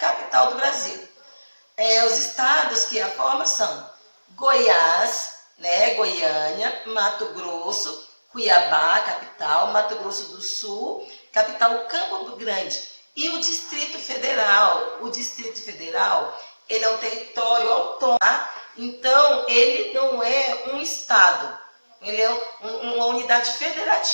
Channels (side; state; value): both; inverted; correlation -1.00